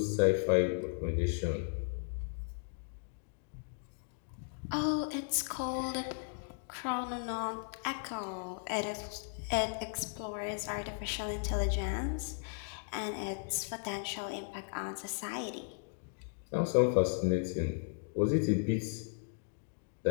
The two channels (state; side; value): silent; right; digital silence